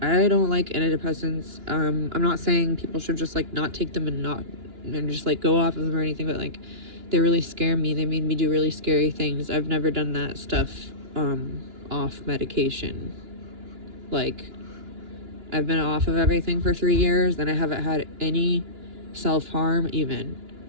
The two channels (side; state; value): left; late; 2.9 ms